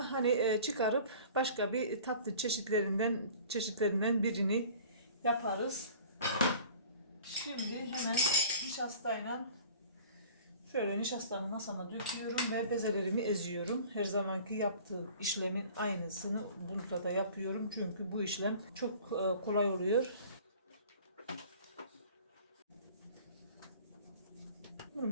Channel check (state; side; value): inverted; both; correlation -0.46